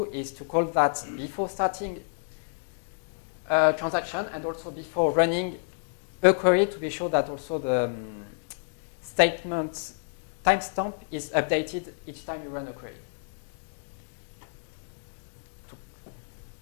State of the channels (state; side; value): silent; right; digital silence